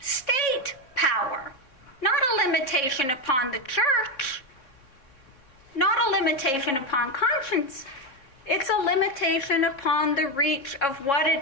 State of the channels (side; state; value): right; late; 3.6 ms